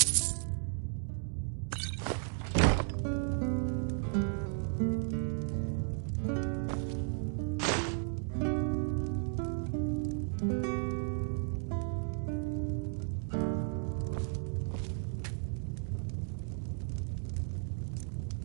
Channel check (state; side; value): silent; left; 55 dB below the other